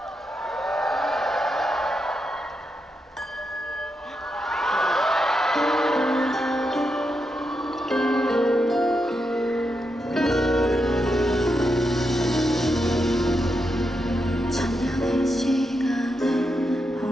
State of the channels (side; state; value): both; normal; correlation 0.85